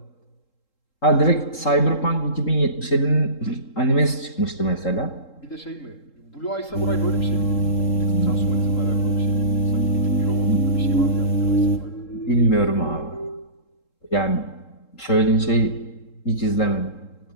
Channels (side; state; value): right; late; 3.7 ms